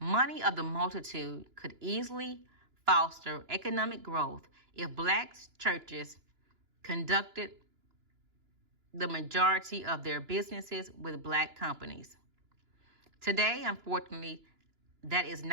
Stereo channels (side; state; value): left; late; 2.9 ms